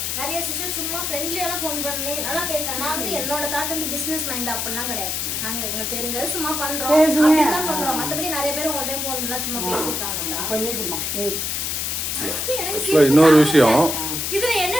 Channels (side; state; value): left; noise; hiss, 1 dB below the sound